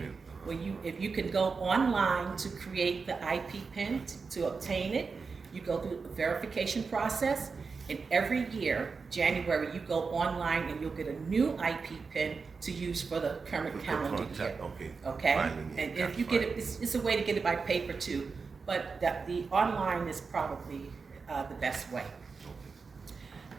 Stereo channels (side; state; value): left; quieter; 4.9 dB